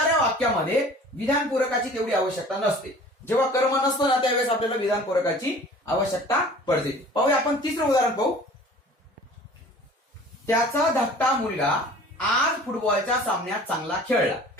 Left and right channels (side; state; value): both; normal; correlation 0.46